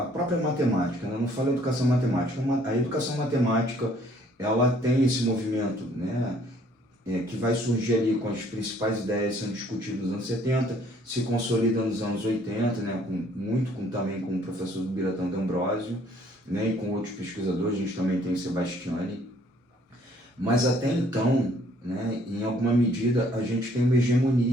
própria matemática, né? Não falo educação matemática, a educação matemática, ela tem esse movimento, né? Que vai surgir ali com as principais ideias sendo discutidas nos anos 70, se consolida nos anos 80, né? Também com o professor Biratã D'Ambrosio, né? E com outros pesquisadores, a gente também tem o Sebastiani. Mas até então, né? Em alguma medida, a gente tem uma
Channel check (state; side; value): normal; both; correlation 0.61